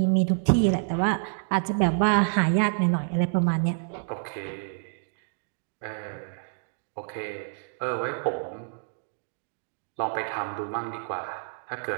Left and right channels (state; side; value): silent; left; digital silence